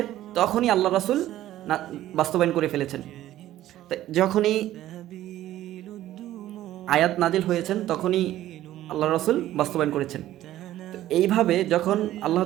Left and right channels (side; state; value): left; quieter; 13.8 dB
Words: তখনই আল্লাহ রাসূল বাস্তবায়ন করে ফেলেছেন। যখনই আয়াত নাজিল হয়েছেন তখনই আল্লাহ রাসূল বাস্তবায়ন করেছেন। তো এইভাবে যখন আল্লাহ